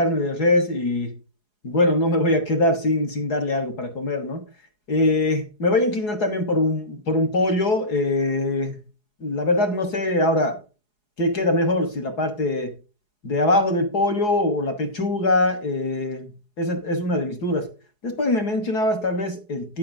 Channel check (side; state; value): right; late; 4.8 ms